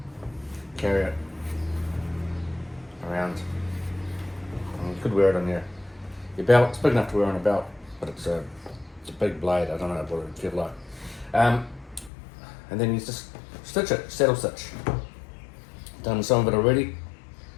carry it around. You could wear it on your belt. It's big enough to wear on a belt, but it's a big blade. I don't know what it would feel like. And then you just stitch it, saddle stitch. Done some of it already.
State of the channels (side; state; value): right; drops out; at 12.1 s